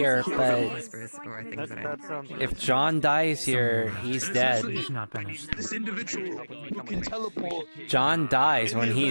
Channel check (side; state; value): both; inverted; correlation -1.00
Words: but Whispers, or things that I... if John dies here, he's dead. He's not finished. This individual who can teleport. John dies when he